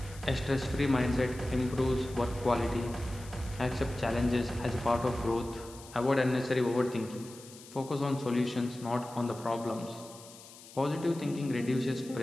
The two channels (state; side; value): noise; left; hiss, 19 dB below the sound